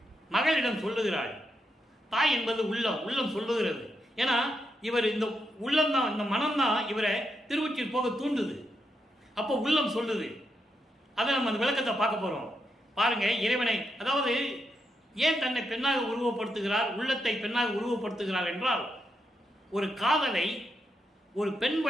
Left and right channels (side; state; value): both; normal; correlation 0.83